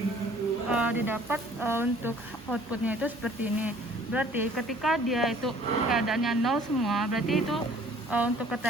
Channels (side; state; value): both; normal; correlation 0.54